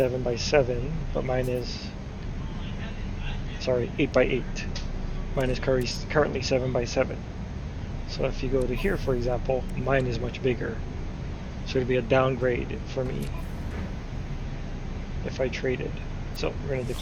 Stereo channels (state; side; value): identical; both; correlation 1.00